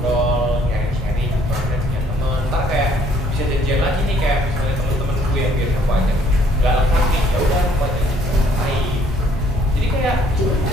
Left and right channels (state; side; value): normal; both; correlation 0.62